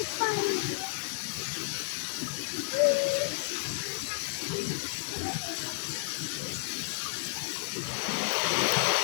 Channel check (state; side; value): silent; right; digital silence